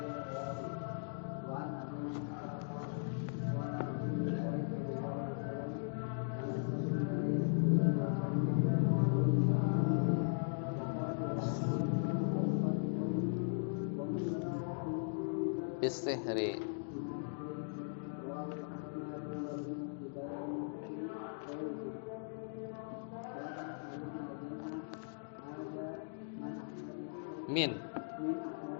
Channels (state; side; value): silent; right; digital silence